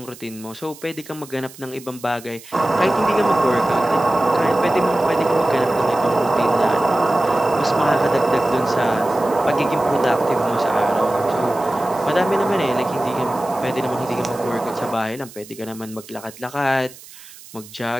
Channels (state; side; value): noise; right; hiss, 19 dB below the sound